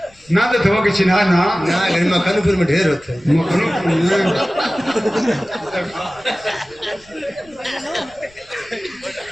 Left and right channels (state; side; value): noise; left; rumble, 29 dB below the sound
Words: ना देते हुआ कि चिन्हा ना मखनपुर में ढेर होते